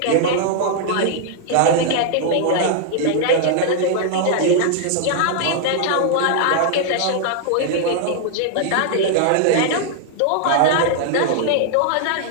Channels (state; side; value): different; both; correlation -0.01